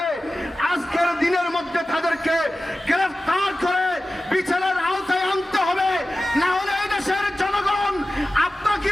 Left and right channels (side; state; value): both; normal; correlation 0.95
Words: আজকের দিনের মধ্যে তাদেরকে গ্রেফতার করে বিচারের আওতায় আনতে হবে। না হলে এই দেশের জনগণ আপনাকে